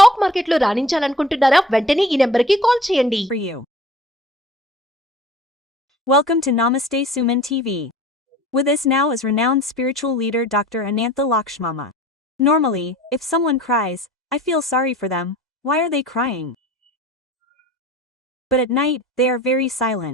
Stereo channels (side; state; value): both; normal; correlation 0.45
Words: మార్కెట్లో రాణించాలనుకుంటున్నారా? వెంటనే ఈ నెంబర్కి కాల్ చేయండి. For you. Welcome to Namaste Suman TV. With us now is renowned spiritual leader Dr. ANATHA LAKSHMI. Normally, if someone cries, I feel sorry for them. Why are they crying? But at night, they are very